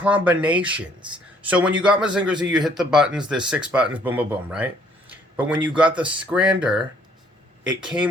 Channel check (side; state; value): both; normal; correlation 0.62